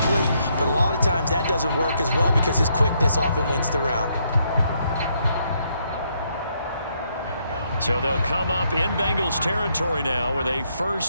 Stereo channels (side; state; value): both; inverted; correlation -0.74